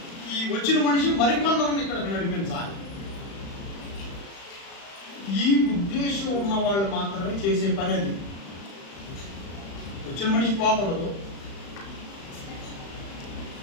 ఈ వచ్చిన మనిషి మరికొందరిని ఇక్కడికి నడిపించాలి. ఈ ఉద్దేశం ఉన్న వాళ్ళు మాత్రమే చేసే పని అది. వచ్చిన మనిషి పోకూడదు,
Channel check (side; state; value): right; late; 35 ms